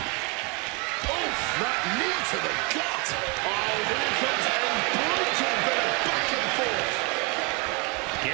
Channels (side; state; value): left; quieter; 31.0 dB